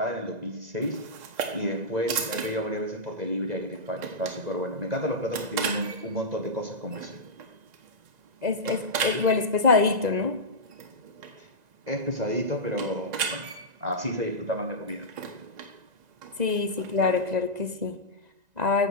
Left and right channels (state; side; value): late; left; 2.0 ms